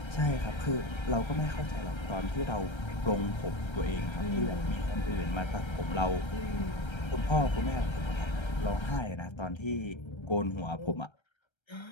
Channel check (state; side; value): late; right; 1.3 ms